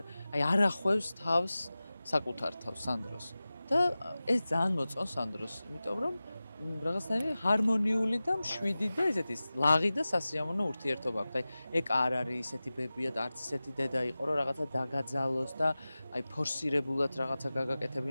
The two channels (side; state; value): both; inverted; correlation -0.97